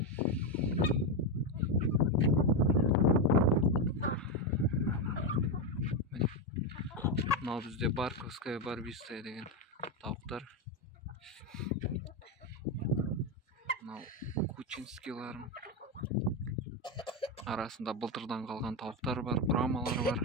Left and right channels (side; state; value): both; normal; correlation 0.09